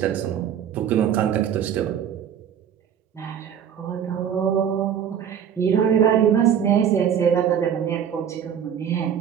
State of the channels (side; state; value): left; quieter; 8.7 dB